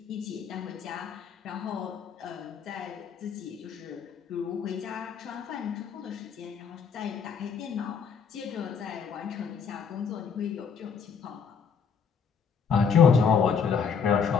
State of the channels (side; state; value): right; quieter; 6.4 dB